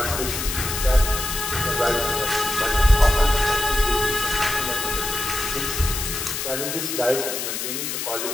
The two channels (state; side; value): noise; left; hiss, 4 dB below the sound